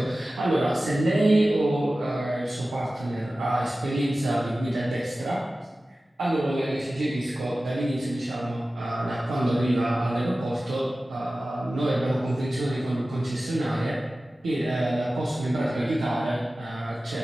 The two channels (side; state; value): both; normal; correlation 0.96